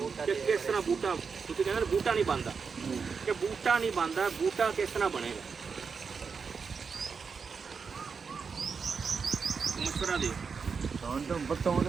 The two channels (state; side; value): quieter; left; 5.5 dB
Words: कि किस तरह बूटा तुम कहना बूटा नहीं बनता कि बूटा नहीं बनता बूटा किस तरह बनेगा मशवरा दे